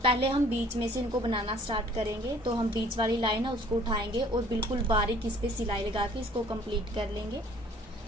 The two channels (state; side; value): normal; both; correlation 0.55